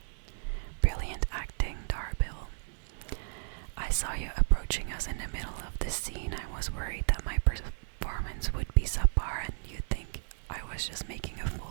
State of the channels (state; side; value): silent; left; digital silence